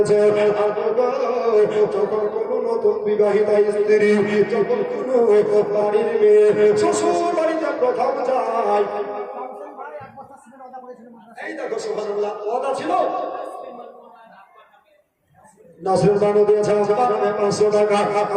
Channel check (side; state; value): both; identical; correlation 1.00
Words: যখন কোনো নতুন বিবাহিতা স্ত্রী যখন কোনো বাড়ির মেয়ে শ্বশুর বাড়িতে প্রথম যায় এই দেখো সুবহানাল্লাহ ওয়াদা ছিল নাসরুল বানু দিয়েছে আমাকে 500 টাকা